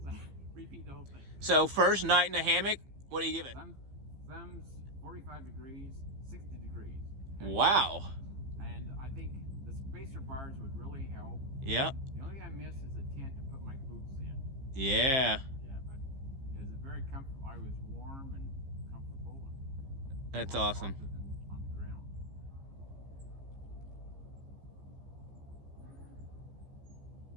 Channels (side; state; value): left; late; 15 ms